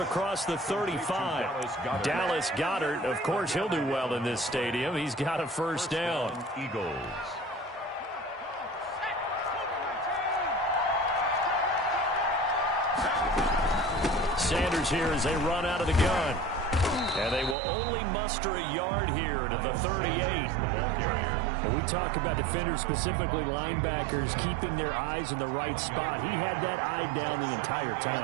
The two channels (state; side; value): drops out; left; at 17.6 s